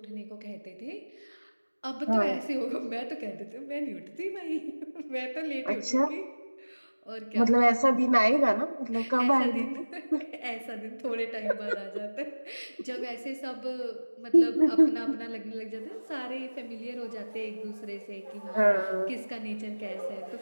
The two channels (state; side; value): inverted; both; correlation -1.00